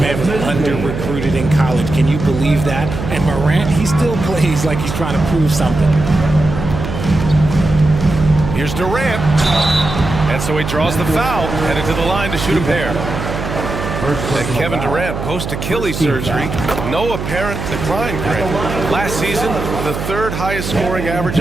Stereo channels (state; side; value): noise; right; hum, 6 dB below the sound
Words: was under-recruited in college. Can you believe that? And Morant, he still plays like he's trying to prove something. Here's Durant. And so he draws the foul, headed to the line to shoot a pair. And Kevin Durant post-Achilles surgery, no apparent decline, Grant. Last season, the 3rd highest scoring average